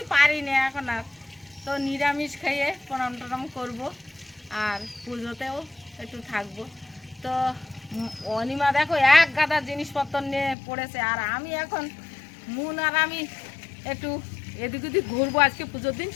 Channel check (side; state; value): right; drops out; at 10.6 s